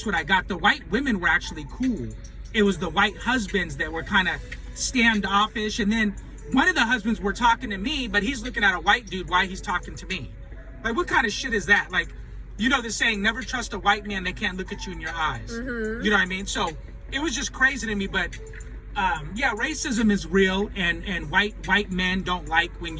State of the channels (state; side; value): identical; both; correlation 1.00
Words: what I got. The white women were actually cool. It was the white husbands that were kind of standoffish. And then one of the husbands were talking to me, but he's looking at a white dude while he's talking to me. Like, what kind of shit is that? Like, you know the saying, never trust a white man, they can't look at you in your eyes. You know what I mean? So it was just crazy to me. But yeah, racism is real, and white men don't like when